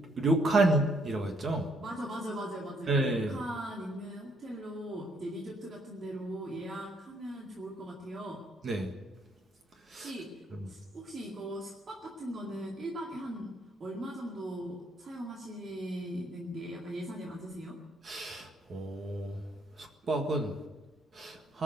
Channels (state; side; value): normal; both; correlation 0.70